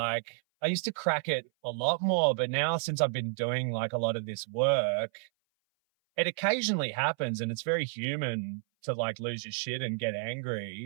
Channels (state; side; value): silent; left; 56 dB below the other